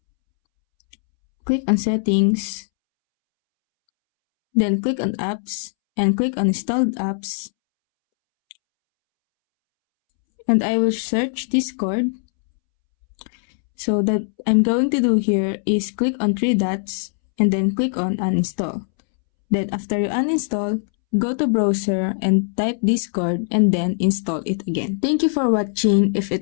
Click on settings. Then click on apps and click on installed apps. And I will search Discord. So that I'm going to do here is click on 3 dots and then click on uninstall. Then after you uninstall, go to browser and type Discord and then install it again. Thank you for watching. If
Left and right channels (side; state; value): right; silent; 65 dB below the other